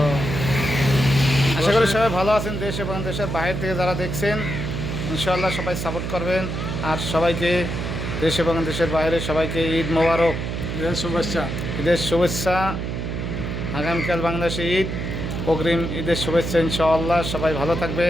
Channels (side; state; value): right; noise; hum, 4 dB below the sound